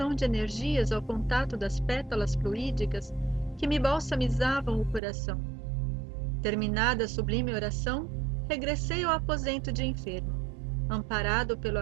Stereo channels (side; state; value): left; drops out; at 5.0 s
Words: de energias ao contato das pétalas fluídicas que me balsamizavam o coração. Terminada a sublime oração, regressei ao aposento de enfermo, amparado pelo